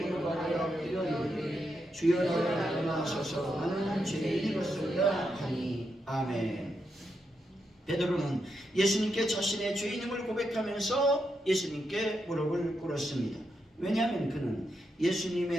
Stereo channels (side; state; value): both; normal; correlation 0.83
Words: 아래 엎드려 이르되 주여 나를 떠나소서 나는 죄인이로소이다 하니. 아멘. 베드로는 예수님께 자신의 죄인임을 고백하면서 예수님께 무릎을 꿇었습니다. 왜냐하면 그는